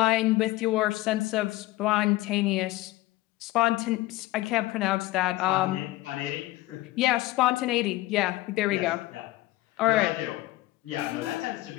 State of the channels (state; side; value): quieter; right; 18.2 dB